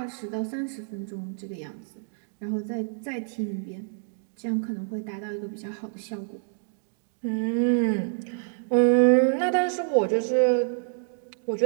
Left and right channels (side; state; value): left; silent; digital silence